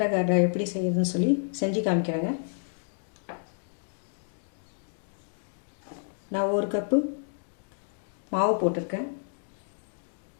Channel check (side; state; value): right; silent; digital silence